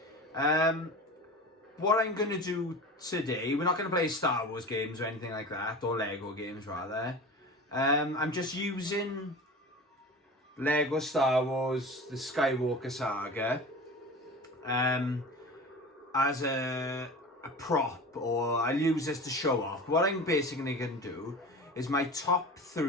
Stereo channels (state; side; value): normal; both; correlation 0.34